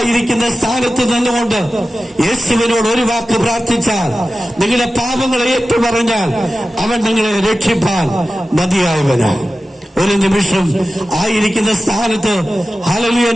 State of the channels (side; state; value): both; normal; correlation 0.94